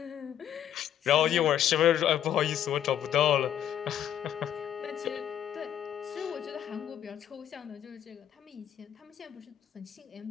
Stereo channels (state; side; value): quieter; right; 10.5 dB